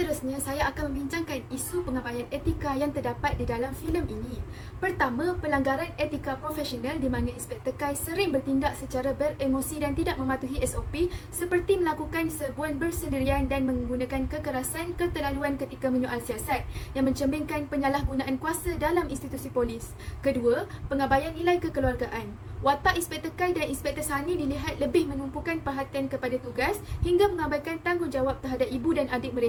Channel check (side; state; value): both; identical; correlation 1.00